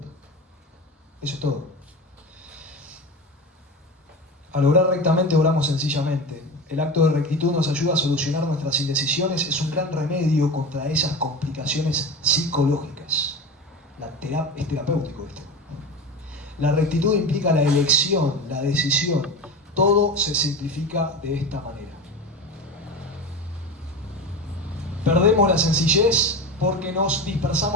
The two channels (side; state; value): both; normal; correlation 0.27